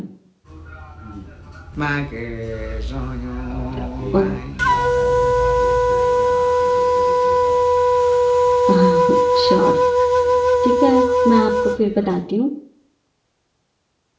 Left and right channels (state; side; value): identical; both; correlation 1.00